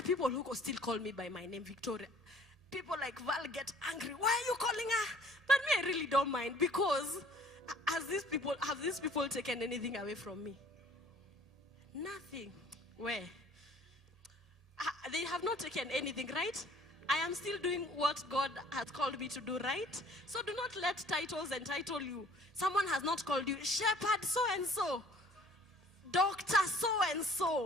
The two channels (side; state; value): both; normal; correlation 0.54